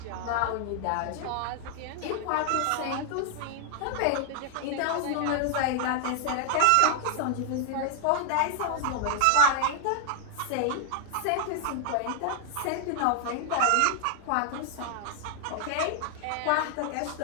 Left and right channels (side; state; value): both; different; correlation 0.00